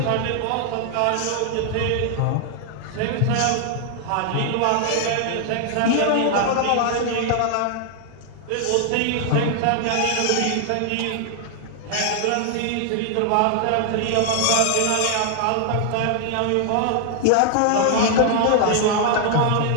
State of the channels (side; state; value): both; different; correlation 0.00